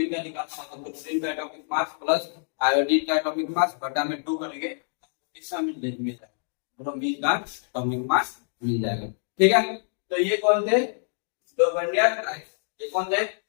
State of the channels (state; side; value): silent; right; digital silence